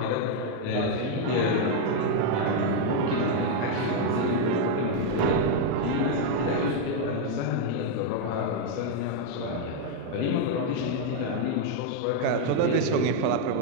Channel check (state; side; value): different; both; correlation 0.00